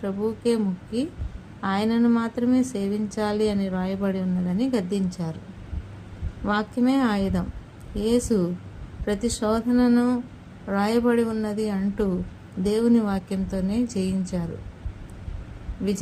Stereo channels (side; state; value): both; identical; correlation 1.00